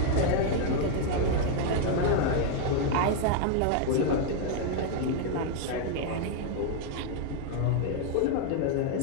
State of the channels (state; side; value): different; both; correlation 0.00